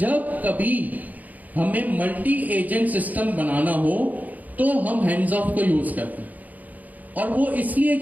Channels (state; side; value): late; left; 0.079 ms